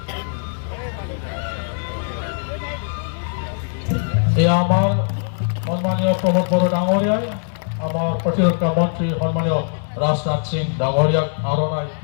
আমার সম্মানীয় প্রমোদ বড় ডাঙরিয়ায় আমার প্রতিরক্ষা মন্ত্রী সম্মানীয় রাজনাথ সিং ডাঙরিয়াক আরনাই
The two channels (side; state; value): right; silent; 65 dB below the other